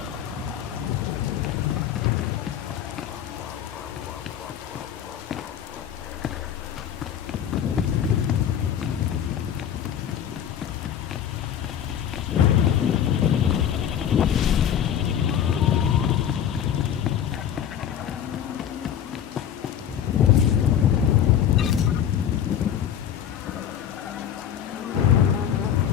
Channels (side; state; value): right; quieter; 9.4 dB